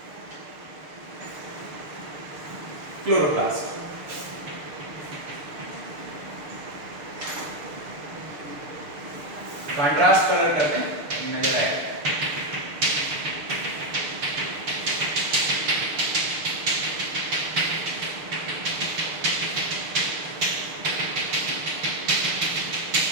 क्लोरोप्लास्ट। कंट्रास्ट कलर करते हैं, नजर आएगा।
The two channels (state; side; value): late; left; 6.7 ms